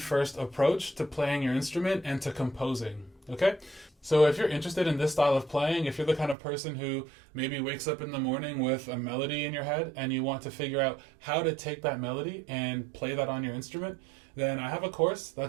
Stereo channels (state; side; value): drops out; left; at 6.4 s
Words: approach to playing your instrument and to composing. Okay? So if you're interested in this style of playing, if you're the kind of person who maybe wakes up in the morning with a melody in your head and you want to figure out how to take that melody and play that on your instrument, then I have a course